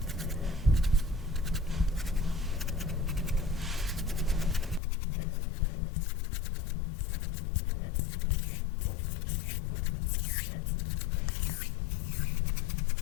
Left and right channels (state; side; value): drops out; right; at 4.8 s